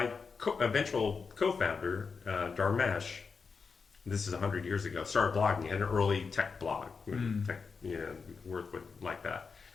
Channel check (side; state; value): right; quieter; 5.2 dB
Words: eventual co-founder, Dharmesh, this is 100 years ago, started blogging. He had an early tech blog. Tech, Worth would like that.